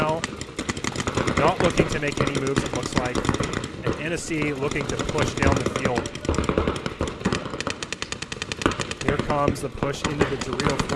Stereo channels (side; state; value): both; identical; correlation 1.00